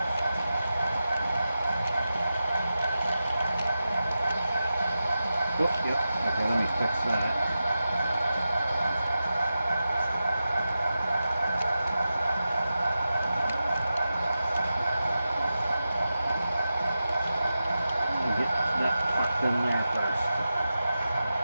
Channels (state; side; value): inverted; both; correlation -0.93